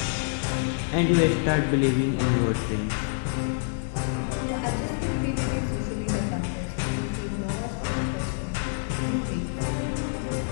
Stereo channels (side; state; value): right; silent; digital silence